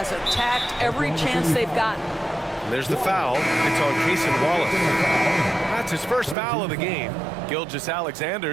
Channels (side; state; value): left; drops out; at 6.4 s